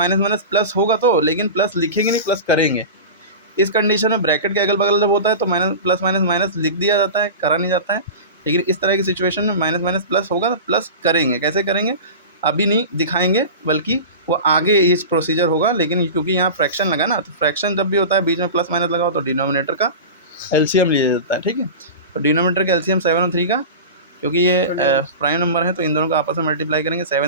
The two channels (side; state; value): both; inverted; correlation -0.30